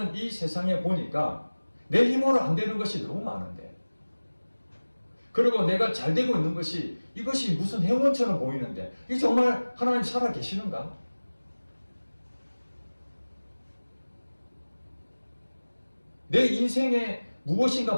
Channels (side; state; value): both; inverted; correlation -1.00